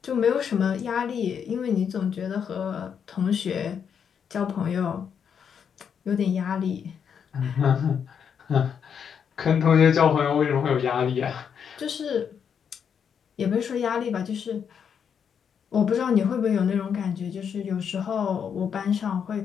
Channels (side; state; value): right; quieter; 7.4 dB